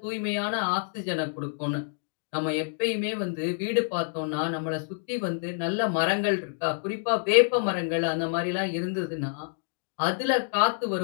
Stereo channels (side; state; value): right; silent; digital silence